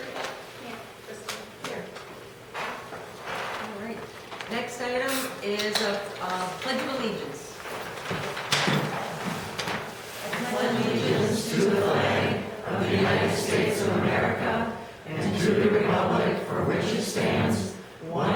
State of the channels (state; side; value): identical; both; correlation 1.00